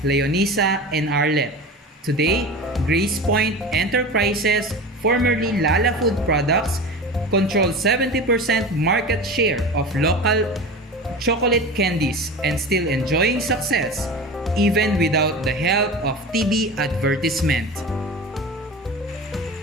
Leonisa, and Arlette. Today, Grace Point Enterprises, formerly Lala Food Products, controls 70% market share of local chocolate candies and still enjoying success even without the help of TV advertisement.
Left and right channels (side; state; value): both; normal; correlation 0.31